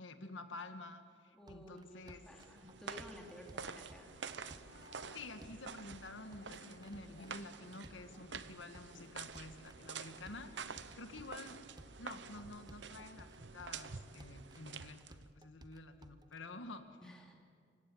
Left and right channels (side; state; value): both; normal; correlation 0.18